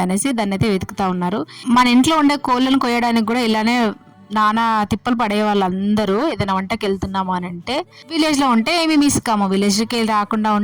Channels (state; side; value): identical; both; correlation 1.00